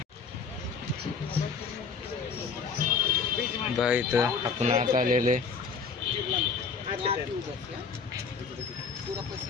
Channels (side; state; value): right; quieter; 5.4 dB